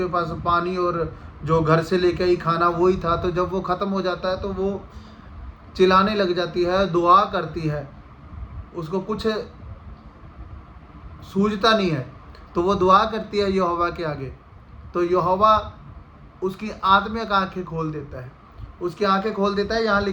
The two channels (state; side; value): identical; both; correlation 1.00